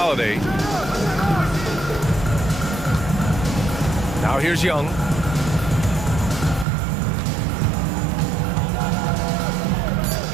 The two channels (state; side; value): drops out; left; at 6.7 s